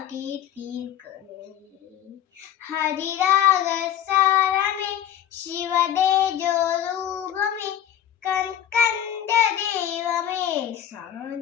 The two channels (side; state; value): right; quieter; 10.6 dB